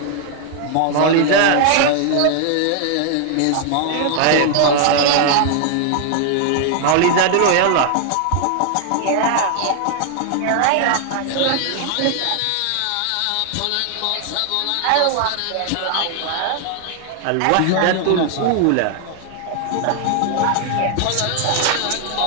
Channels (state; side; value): different; both; correlation 0.00